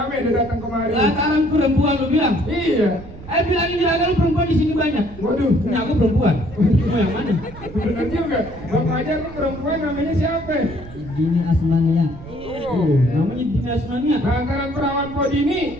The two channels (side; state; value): right; noise; rumble, 17 dB below the sound